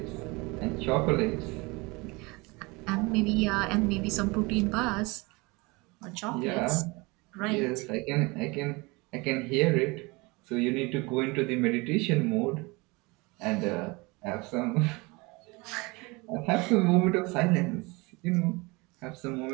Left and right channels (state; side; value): quieter; left; 25.5 dB